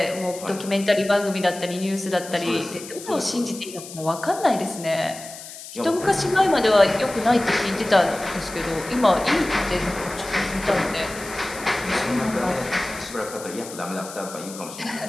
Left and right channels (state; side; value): noise; left; hiss, 13 dB below the sound